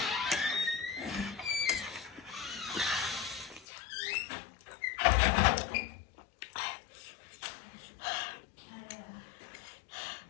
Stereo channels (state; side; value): drops out; right; at 3.7 s